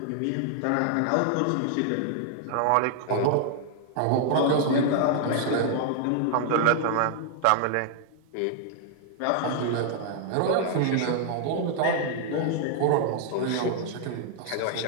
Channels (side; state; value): both; different; correlation 0.00